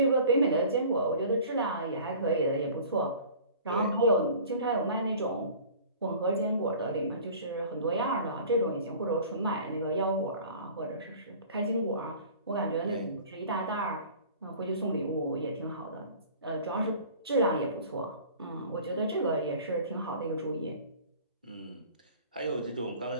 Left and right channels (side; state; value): both; inverted; correlation -0.45